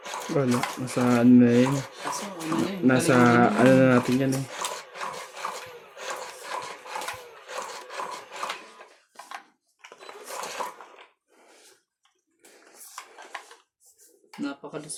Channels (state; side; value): identical; both; correlation 1.00